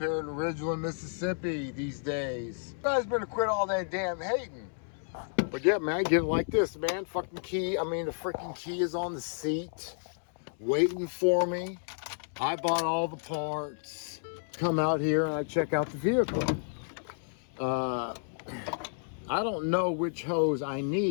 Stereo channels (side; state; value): right; silent; 57 dB below the other